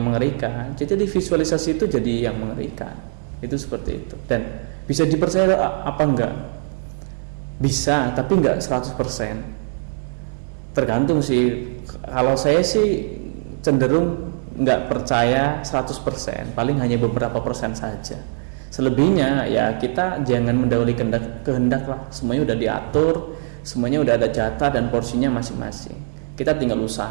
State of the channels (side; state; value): left; silent; digital silence